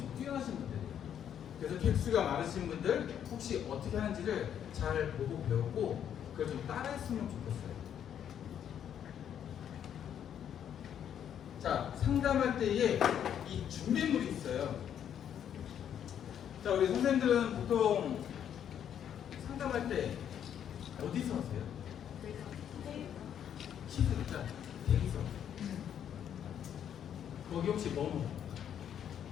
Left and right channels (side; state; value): right; quieter; 9.3 dB